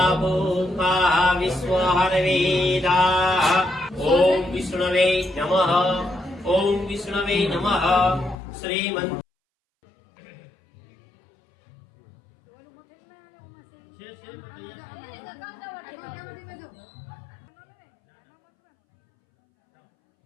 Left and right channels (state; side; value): drops out; right; at 8.3 s